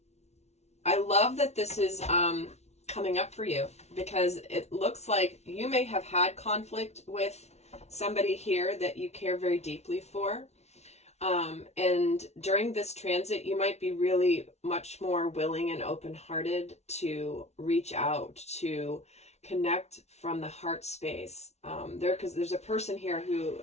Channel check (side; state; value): right; late; 0.31 ms